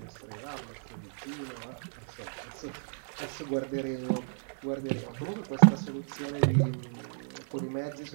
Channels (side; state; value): left; silent; digital silence